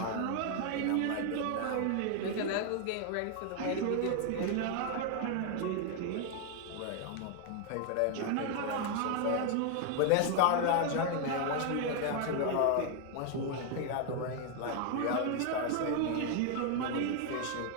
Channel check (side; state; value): both; different; correlation 0.00